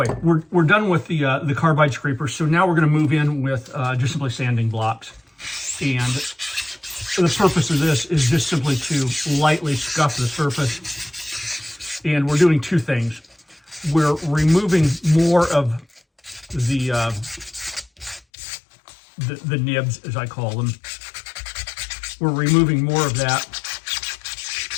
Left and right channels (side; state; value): right; drops out; at 18.2 s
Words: we're done with the carbide scraper. So now we're going to move in with just simply sanding blocks. And the purpose of this is just simply to lightly scuff the surface. And we're doing two things. We're removing more of the nibs, as I call them. We're removing more of that,